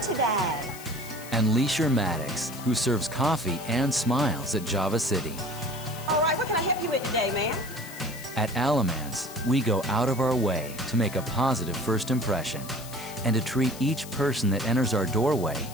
today? And Leisure Maddox, who serves coffee and smiles at Java City. All right, what can I help you with today, ma'am? At Alamance, we go out of our way to make a positive first impression and to treat each person that enters our doorway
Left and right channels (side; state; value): left; noise; hiss, 15 dB below the sound